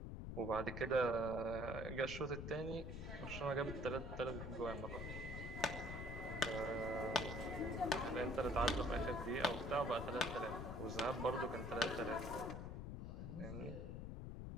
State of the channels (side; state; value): left; noise; rumble, 6 dB below the sound